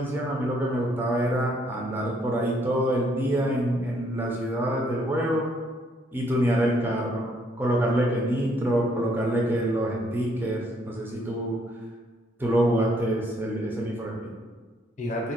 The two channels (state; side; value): normal; both; correlation 0.68